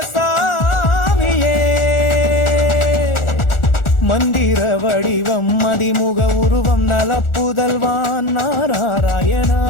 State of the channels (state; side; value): late; right; 1.4 ms